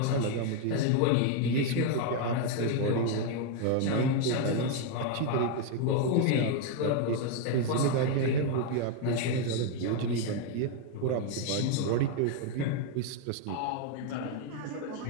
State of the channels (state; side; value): different; both; correlation 0.01